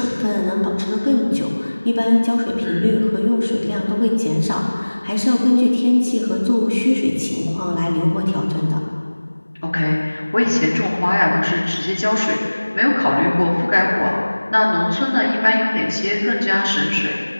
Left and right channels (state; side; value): inverted; both; correlation -1.00